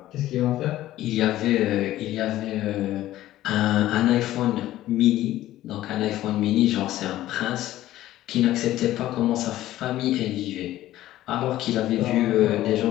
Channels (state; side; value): quieter; right; 14.5 dB